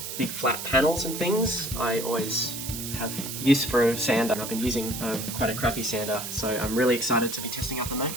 big flat panels and things, I always have use for a sander. I've been using quite a crappy sander, so I'm really excited to be testing out the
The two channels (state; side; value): noise; right; hiss, 7 dB below the sound